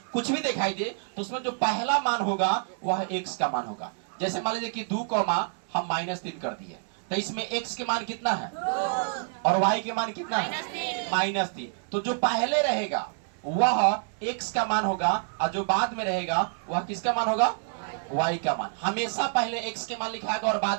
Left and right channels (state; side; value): silent; left; 59 dB below the other